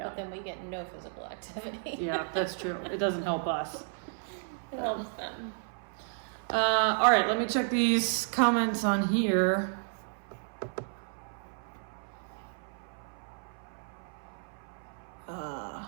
But then we get no physical activity. Yeah, that's true. It doesn't help us. It helps them. All right, let me check these comments on here.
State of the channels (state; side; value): silent; left; 56 dB below the other